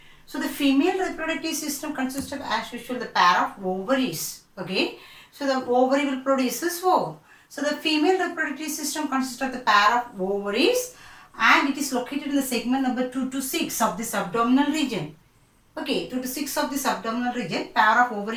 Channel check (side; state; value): both; identical; correlation 1.00